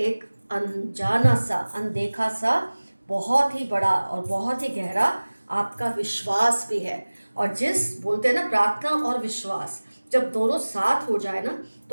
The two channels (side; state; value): both; inverted; correlation -1.00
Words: अनजाना सा, अनदेखा सा, बहुत ही बड़ा और बहुत ही गहरा आपका विश्वास भी है। और जिस बोलते हैं ना, प्रार्थना और विश्वास जब दोनों साथ हो जाए ना